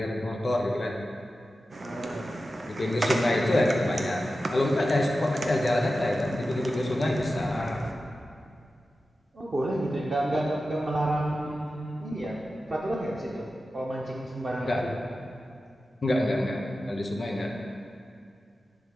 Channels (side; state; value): both; normal; correlation 0.93